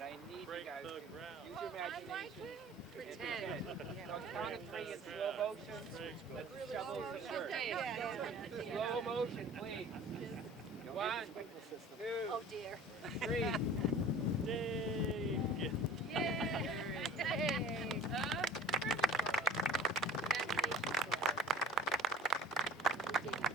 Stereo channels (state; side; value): normal; both; correlation 0.45